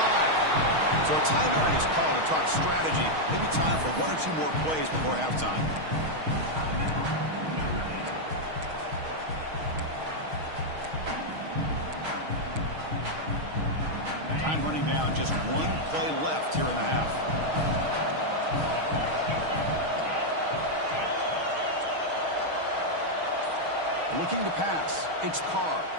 So a timeout is called to talk strategy. Maybe time for 1 or 2 more plays before halftime. Time running down. Just 1 play left here in the half. Looking to pass. It's Carr.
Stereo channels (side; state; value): left; late; 6.4 ms